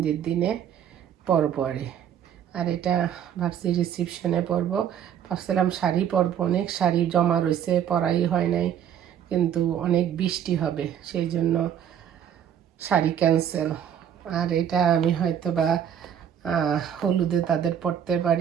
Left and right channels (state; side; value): quieter; left; 9.3 dB